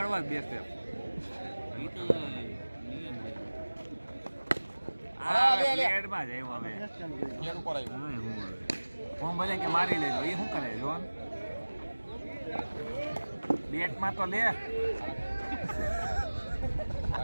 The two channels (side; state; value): both; inverted; correlation -1.00